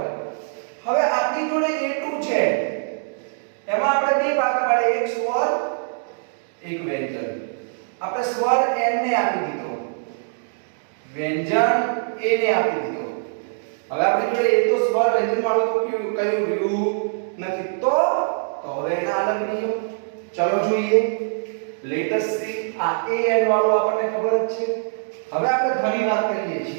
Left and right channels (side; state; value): left; silent; digital silence